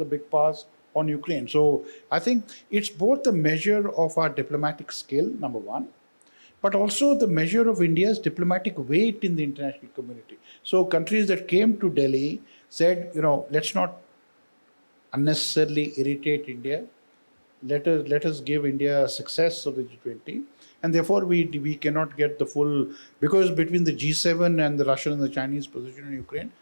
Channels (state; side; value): inverted; both; correlation -1.00